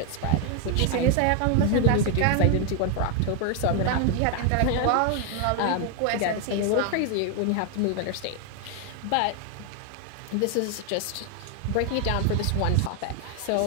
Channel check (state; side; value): different; both; correlation 0.00